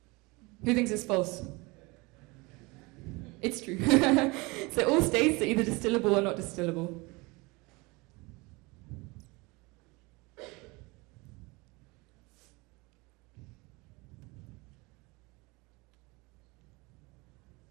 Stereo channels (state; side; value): quieter; left; 25.1 dB